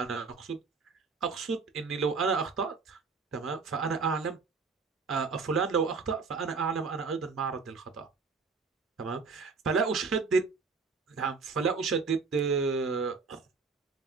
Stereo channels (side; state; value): left; quieter; 4.8 dB